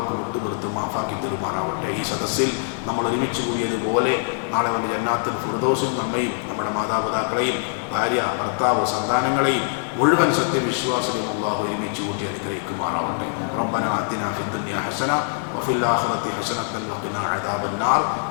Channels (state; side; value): silent; right; 63 dB below the other